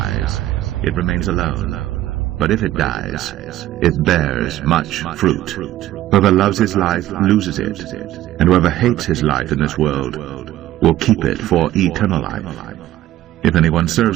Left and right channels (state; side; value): quieter; left; 14.2 dB